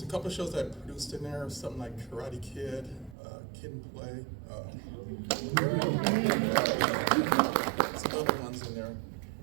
a couple of shows that I produced in there, something like Karate Kid, Kid and Play, some other ones in there.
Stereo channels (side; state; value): left; drops out; at 3.2 s